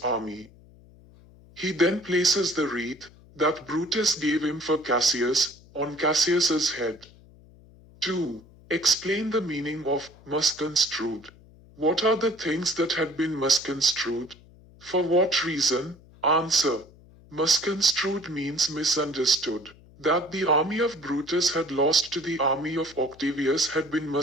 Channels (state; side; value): noise; left; hum, 24 dB below the sound